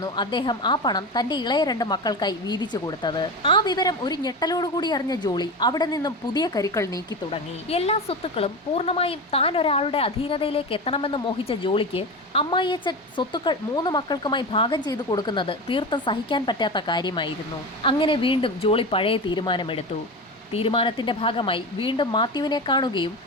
അദ്ദേഹം ആ പണം തന്റെ ഇളയ 2 മക്കൾക്കായി വീതിച്ചു കൊടുത്തത്. ആ വിവരം ഒരു ഞെട്ടലോടുകൂടി അറിഞ്ഞ ജോളി അവിടെ നിന്നും പുതിയ കരുക്കൾ നീക്കി തുടങ്ങി. എല്ലാ സ്വത്തുക്കളും പൂർണ്ണമായും താൻ ഒരാളുടെ അധീനതയിലേക്ക് എത്തണമെന്ന് മോഹിച്ച ജോളിക്ക് അമ്മായിയച്ഛൻ സ്വത്തുക്കൾ 3 മക്കൾക്കുമായി ഭാഗം ചെയ്തു കൊടുക്കുന്നത് തീർത്തും സഹിക്കാൻ പറ്റാത്ത കാര്യമായിരുന്നു. അങ്ങനെ വീണ്ടും ജോളി പഴയ തീരുമാനമെടുത്തു. തീരുമാനത്തിന്റെ ഭാഗമായി വീണ്ടും മാത്യുവിനെ കാണുകയും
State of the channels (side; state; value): both; normal; correlation 0.24